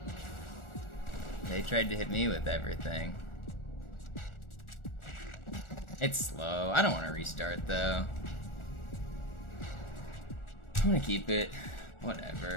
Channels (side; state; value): right; late; 1.4 ms